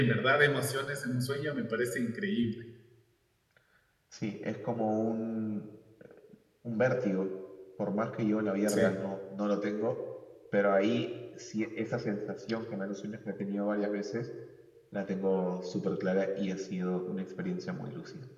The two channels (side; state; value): both; identical; correlation 1.00